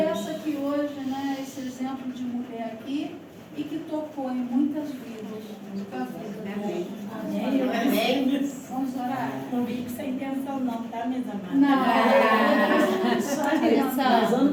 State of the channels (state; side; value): identical; both; correlation 1.00